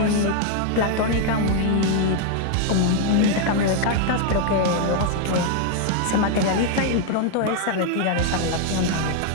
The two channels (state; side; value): different; both; correlation 0.00